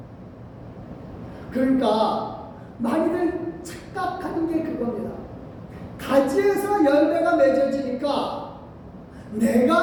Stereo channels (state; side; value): identical; both; correlation 1.00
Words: 그러니까 많이들 착각하는 게 그겁니다. 가지에서 열매가 맺어지니까